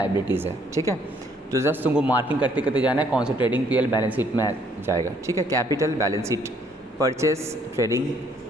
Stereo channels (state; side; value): normal; both; correlation 0.65